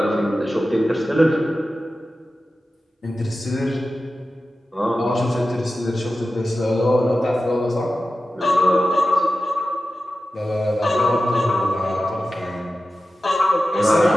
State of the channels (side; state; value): both; normal; correlation 0.94